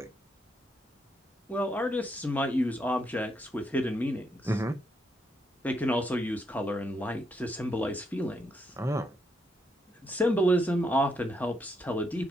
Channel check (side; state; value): both; normal; correlation 0.78